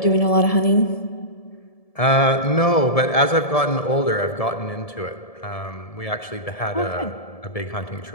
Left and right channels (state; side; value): late; right; 1.7 ms